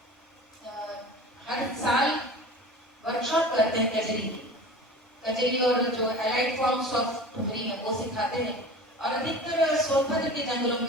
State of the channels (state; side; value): normal; both; correlation 0.37